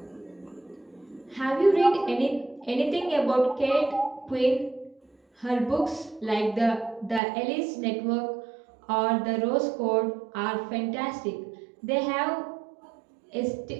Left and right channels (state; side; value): drops out; left; at 7.2 s